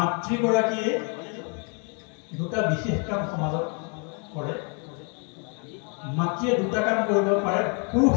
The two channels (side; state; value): right; quieter; 37.8 dB